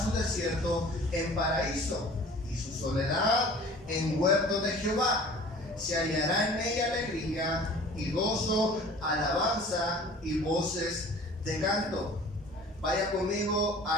su desierto en paraíso, y su soledad en huerto de Jehová. Se hallará en ella alegría y gozo, alabanza y voces de canto. Vaya conmigo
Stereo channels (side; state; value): both; normal; correlation 0.46